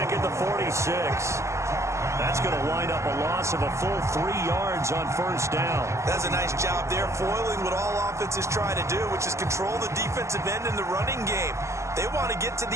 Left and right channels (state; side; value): late; left; 0.14 ms